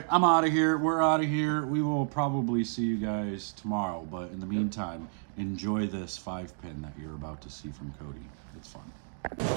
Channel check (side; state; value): left; silent; 57 dB below the other